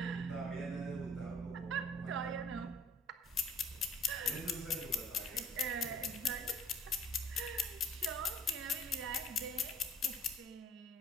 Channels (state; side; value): normal; both; correlation 0.51